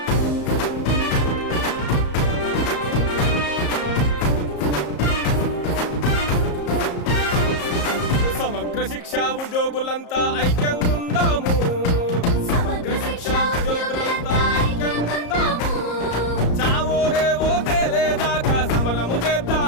సమగ్ర శిక్షా ఉద్యోగులంతా ఐక్యంగా ఉందాము. సమగ్ర శిక్షా ఉద్యోగులంతా ఐక్యంగా ఉందాము. చావో రేవో తేలేదాకా సమరము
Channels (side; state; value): right; late; 34 ms